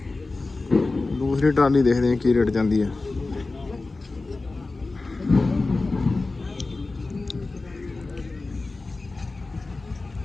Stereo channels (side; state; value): right; quieter; 3.4 dB